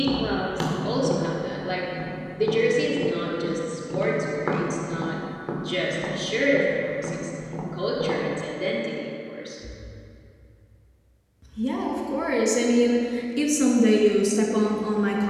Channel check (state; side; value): identical; both; correlation 1.00